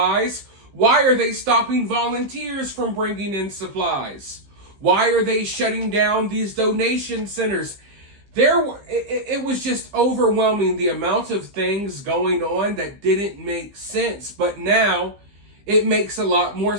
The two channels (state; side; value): late; left; 15 ms